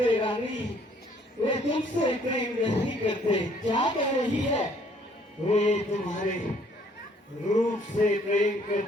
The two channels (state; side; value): normal; both; correlation 0.62